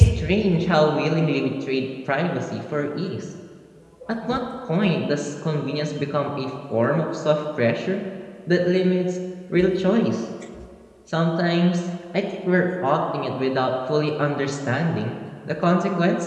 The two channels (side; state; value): both; identical; correlation 1.00